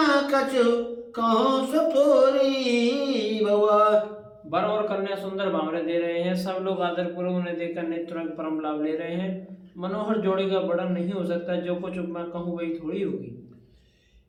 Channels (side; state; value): both; identical; correlation 1.00